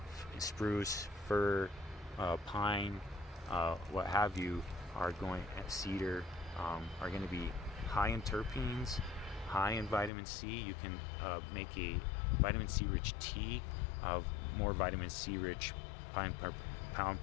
spruce, fir, pine, what have you, cedar, are going to be high in terpenes, high in vitamin C. You can make a vitamin C rich tea of more vitamin C rich pound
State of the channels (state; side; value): drops out; right; at 10.1 s